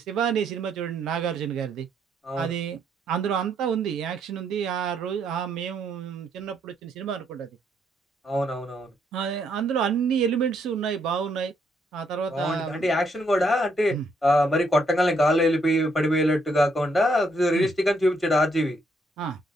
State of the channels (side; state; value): both; normal; correlation 0.73